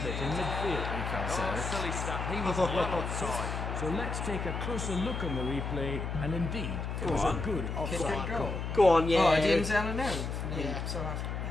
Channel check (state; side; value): noise; left; hum, 4 dB below the sound